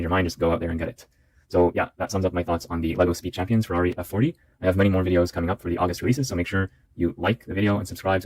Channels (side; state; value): both; identical; correlation 1.00